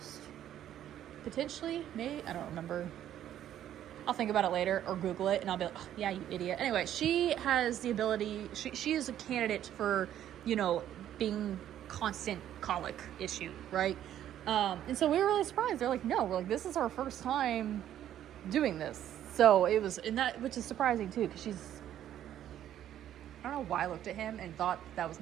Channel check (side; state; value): left; quieter; 11.3 dB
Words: Potentially, maybe, I don't remember. I'll think about it later or Google it and I'll be like, oh, yeah, you idiot. Anyway, she has the ability, she is a candidate for, you know, being constant colic issue, right? And so we were really surprised. They're like, no, we're like, this is our first time doing this. So it was, and that, which is surprising too, because she's, I don't know why I looked at him and thought that was